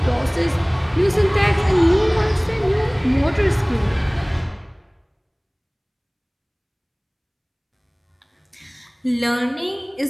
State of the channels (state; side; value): identical; both; correlation 1.00